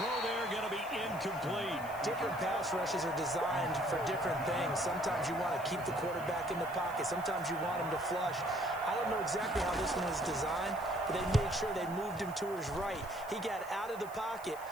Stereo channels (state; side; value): noise; left; hiss, 19 dB below the sound